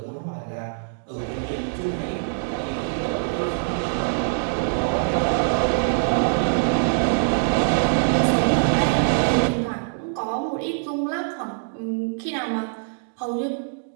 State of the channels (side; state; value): left; silent; digital silence